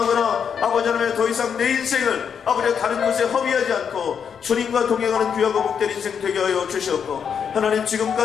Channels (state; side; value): quieter; right; 7.2 dB